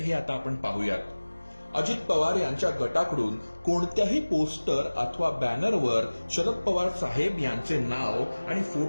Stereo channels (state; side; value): inverted; both; correlation -1.00